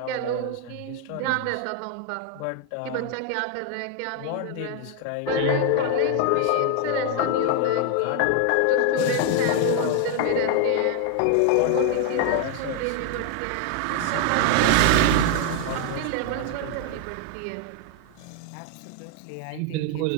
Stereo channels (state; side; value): different; both; correlation 0.00